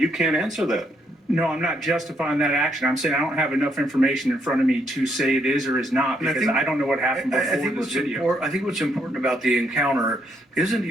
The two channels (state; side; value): normal; both; correlation 0.74